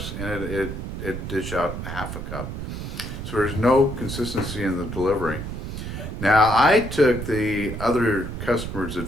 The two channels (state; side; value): noise; right; rumble, 6 dB below the sound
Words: and it dish out half a cup. So there's no consistency in the delivery. Now, I took the other customer's